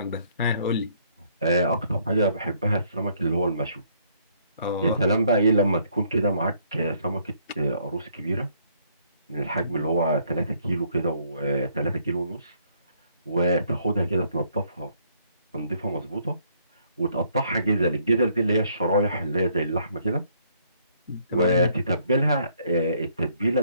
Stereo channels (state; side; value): inverted; both; correlation -0.67